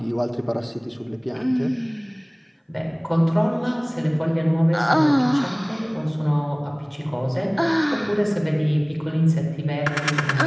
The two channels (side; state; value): both; identical; correlation 1.00